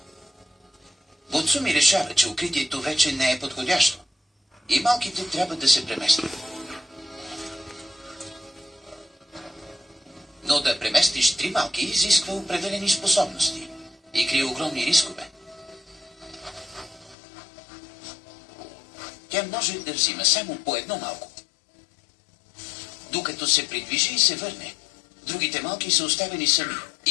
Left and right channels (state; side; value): drops out; right; at 17.2 s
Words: Буцуми решава, че укритието вече не е подходящо и малките трябва да се преместят. Но да преместиш 3 малки изисква определени способности и крие огромни рискове. Тя може да взима само по едно малко. Докато се придвижи и се върне, другите малки са оставени сами